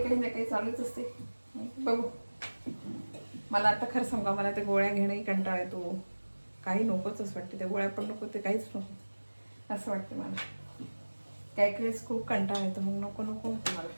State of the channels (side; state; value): both; inverted; correlation -1.00